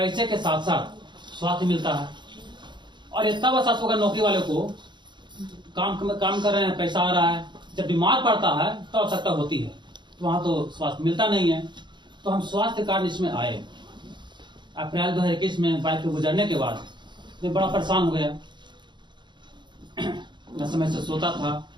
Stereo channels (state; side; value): late; left; 0.22 ms